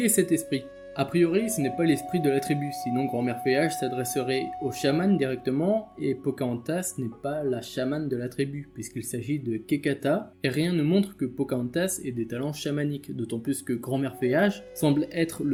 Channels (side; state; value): both; identical; correlation 1.00